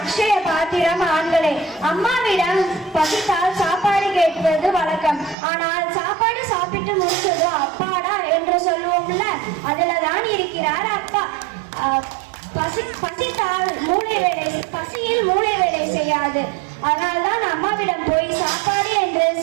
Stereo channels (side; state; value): left; drops out; at 5.4 s